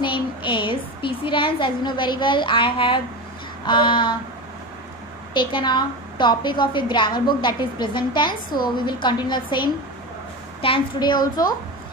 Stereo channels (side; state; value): both; normal; correlation 0.23